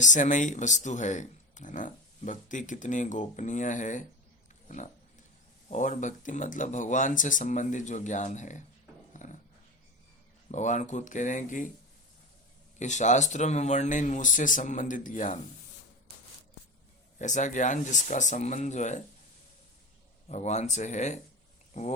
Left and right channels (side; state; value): both; normal; correlation 0.25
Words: वस्तु है ना। भक्ति कितनी गोपनीय है ना। और भक्ति मतलब भगवान से संबंधित जो ज्ञान है ना। भगवान खुद कह रहे हैं कि शास्त्रों में वर्णित मुझसे संबंधित ज्ञान, ऐसा ज्ञान जिसका संबंध जो है भगवान से है,